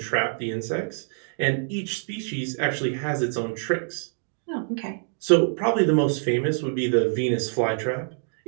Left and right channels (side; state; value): left; silent; digital silence